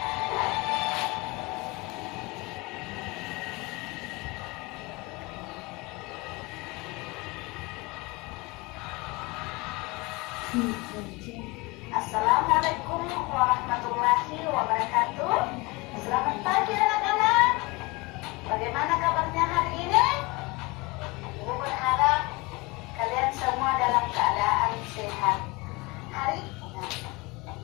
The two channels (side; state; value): right; quieter; 24.6 dB